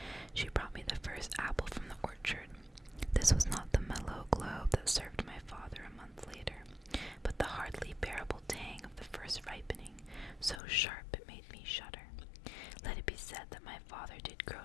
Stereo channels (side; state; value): right; drops out; at 10.6 s